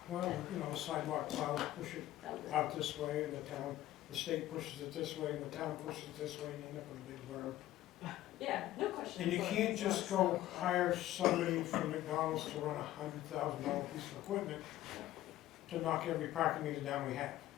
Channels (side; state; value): right; quieter; 14.4 dB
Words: Well, you know, sidewalk plows push it That would- out this way, and the state pushes it this way, and the town pushes it this way, and you end up with a big berm. Yeah, no question. And you can't just go hire somebody from McDonald's to run $100,000 piece of equipment to knock every parking meter down we have.